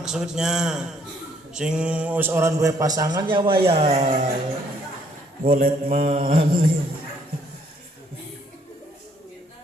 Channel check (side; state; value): both; normal; correlation 0.66